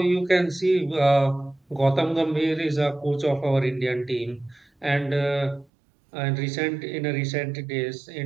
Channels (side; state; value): left; drops out; at 5.7 s